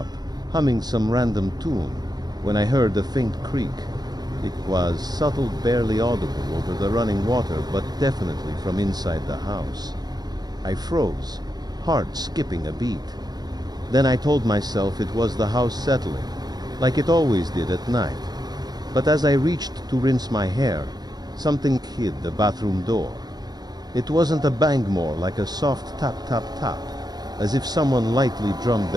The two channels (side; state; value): left; late; 0.19 ms